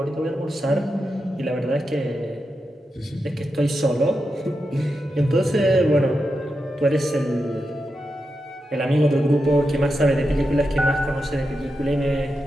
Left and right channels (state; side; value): normal; both; correlation 0.88